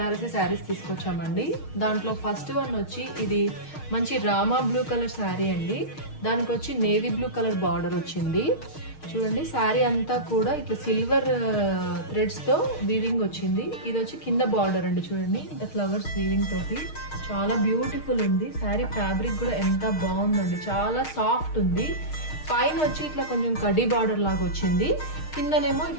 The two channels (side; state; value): right; late; 6.5 ms